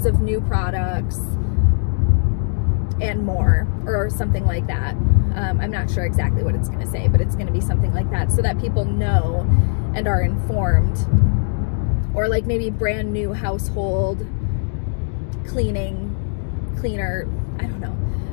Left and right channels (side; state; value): right; silent; digital silence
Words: of new products, and more, or something like that. I'm not sure exactly what it's gonna say, but it's gonna be something like that so that people know and are informed. Or like maybe brand new household cleaner, I don't know,